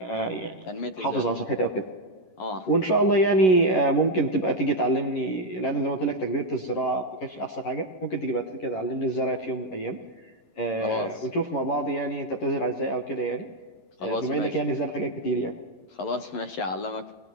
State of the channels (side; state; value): right; late; 11 ms